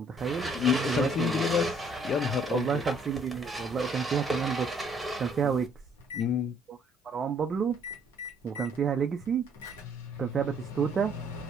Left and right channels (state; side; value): normal; both; correlation 0.63